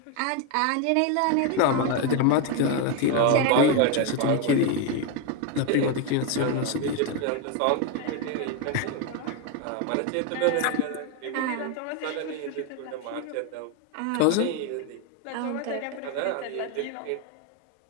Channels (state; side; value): different; both; correlation 0.02